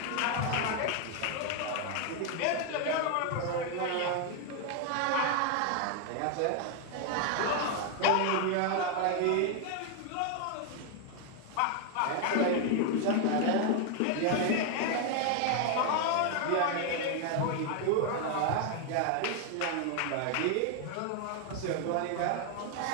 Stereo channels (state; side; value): different; both; correlation 0.00